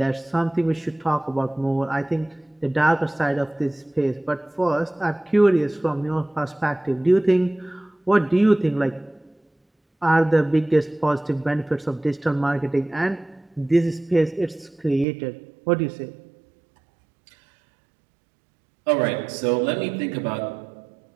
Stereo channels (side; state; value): left; drops out; at 15.1 s